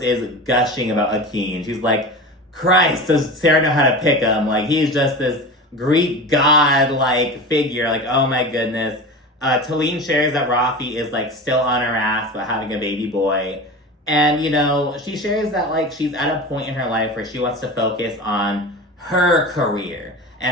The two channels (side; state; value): both; normal; correlation 0.30